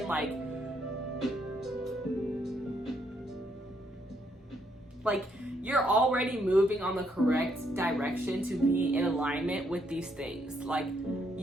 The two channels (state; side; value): normal; both; correlation 0.73